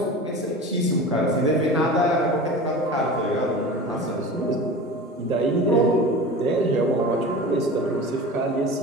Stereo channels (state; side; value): normal; both; correlation 0.34